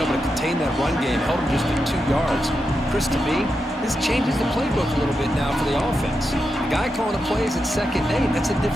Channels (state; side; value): normal; both; correlation 0.87